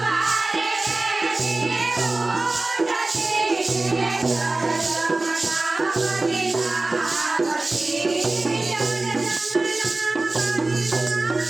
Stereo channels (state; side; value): quieter; left; 3.2 dB